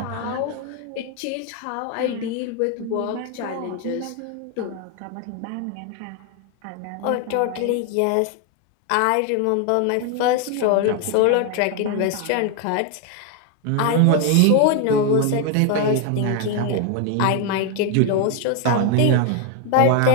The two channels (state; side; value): different; both; correlation 0.01